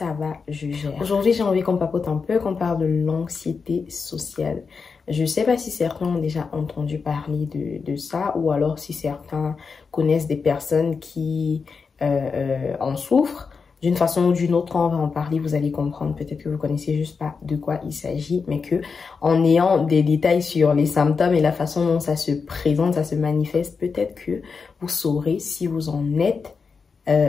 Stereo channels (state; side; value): quieter; right; 5.2 dB